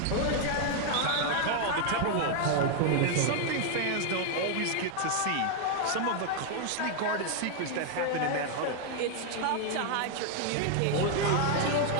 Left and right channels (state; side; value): different; both; correlation 0.00